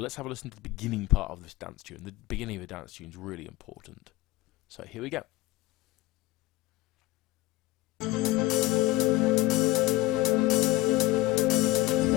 have a listen to the beginning part of this dance tune. The beginning of a dance tune is really important. So here we go.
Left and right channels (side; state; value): right; quieter; 19.5 dB